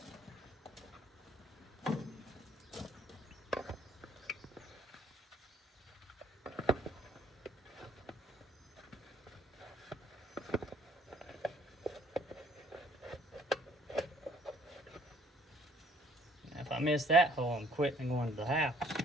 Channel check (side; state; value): both; normal; correlation 0.61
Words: If I miss that hole, I'm quitting and going to the house.